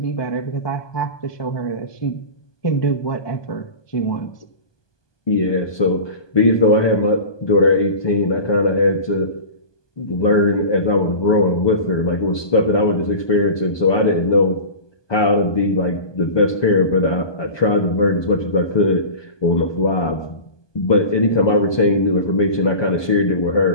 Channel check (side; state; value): right; late; 1.2 ms